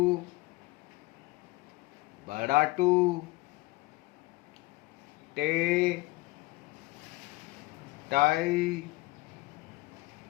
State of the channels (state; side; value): quieter; right; 20.7 dB